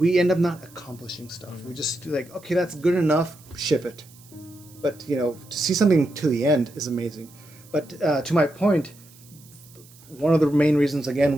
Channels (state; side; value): noise; right; hiss, 24 dB below the sound